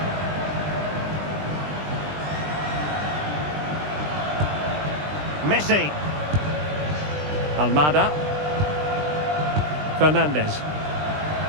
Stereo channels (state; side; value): late; left; 20 ms